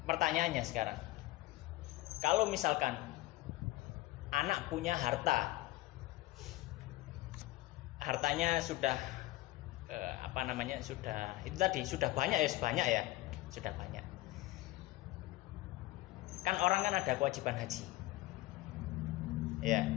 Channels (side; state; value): right; quieter; 18.6 dB